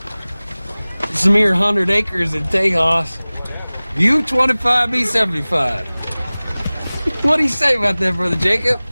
It's a mere 100 acres in Tejas. You 25, me 75. What do you say about that, Brother Jacob?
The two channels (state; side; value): inverted; both; correlation -0.99